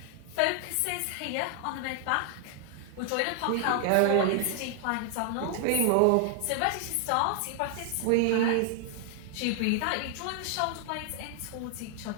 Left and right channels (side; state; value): both; different; correlation 0.00